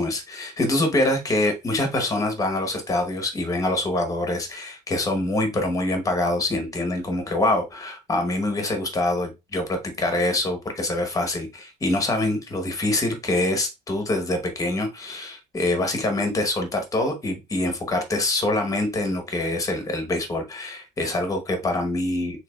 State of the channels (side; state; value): both; normal; correlation 0.52